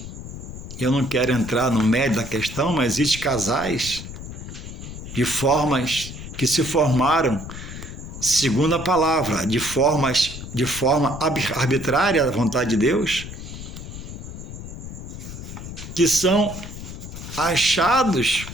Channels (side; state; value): left; noise; rumble, 10 dB below the sound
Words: Eu não quero entrar no mérito da questão, mas existem casais de formas que se formaram segundo a palavra, de forma arbitrária à vontade de Deus, que são achados